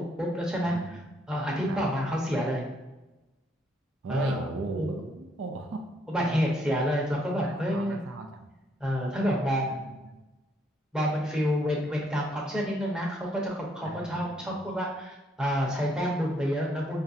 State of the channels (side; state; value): both; normal; correlation 0.71